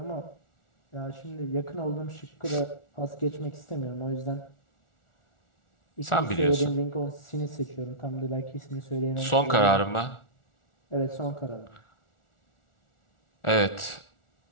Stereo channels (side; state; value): right; late; 1.4 ms